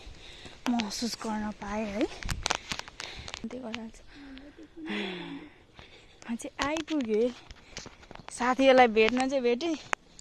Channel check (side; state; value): both; identical; correlation 1.00